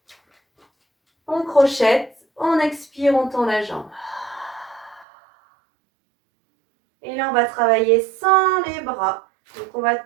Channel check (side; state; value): left; drops out; at 5.1 s